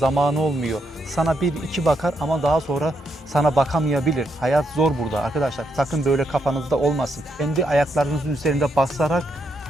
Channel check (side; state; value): both; normal; correlation 0.79